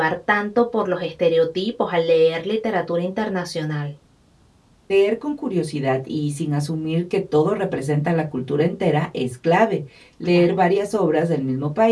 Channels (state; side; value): identical; both; correlation 1.00